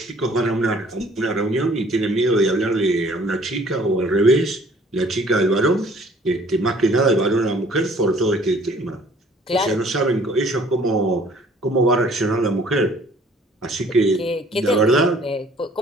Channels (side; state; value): both; normal; correlation 0.56